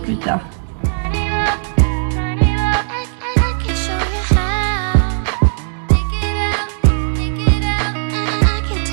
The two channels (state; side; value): silent; left; digital silence